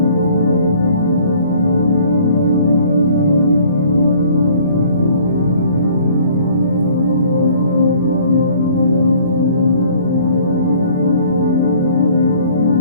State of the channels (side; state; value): both; inverted; correlation -0.55